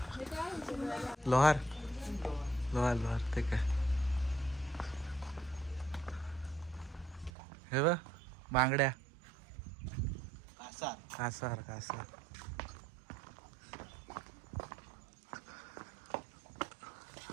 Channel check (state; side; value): drops out; left; at 7.3 s